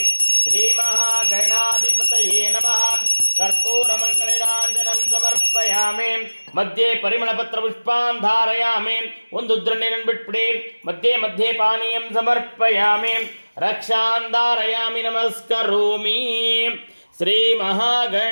ಶ್ರೀ ಮಹಾಗಣಾಧಿಪತಯೇ ನಮಃ. ಕರ್ಪೂರಮಂಗಳೀರಾಂಜನಂ ಸಮರ್ಪಯಾಮಿ. ಮಧ್ಯೆ ಪರಿಮಳಪತ್ರ ಪುಷ್ಪಾನ್ ಧಾರಯಾಮಿ. ಒಂದು ಉದ್ಧರಣ ನೀರನ್ನು ಬಿಟ್ಬಿಡಿ. ಮಧ್ಯೆ ಮಧ್ಯೆ ಪಾನೀಯಂ ಸಮರ್ಪಯಾಮಿ. ರಕ್ಷಾನ್ ಧಾರಯಾಮಿ. ನಮಸ್ಕರೋಮಿ. ಶ್ರೀ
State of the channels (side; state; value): both; inverted; correlation -1.00